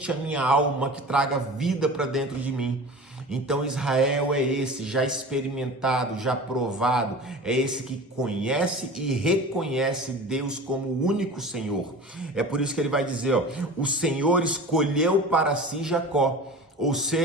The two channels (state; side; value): normal; both; correlation 0.36